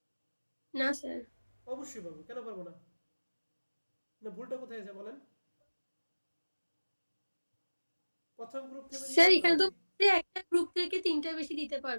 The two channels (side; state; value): both; inverted; correlation -1.00